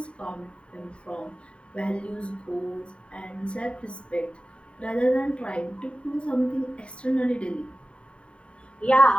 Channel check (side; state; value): right; late; 0.058 ms